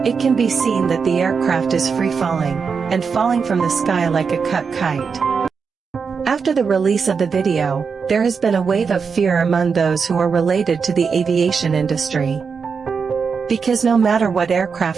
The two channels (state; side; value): quieter; left; 5.7 dB